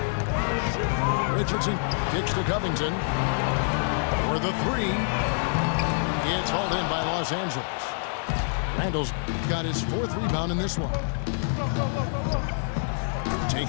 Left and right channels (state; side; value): silent; right; digital silence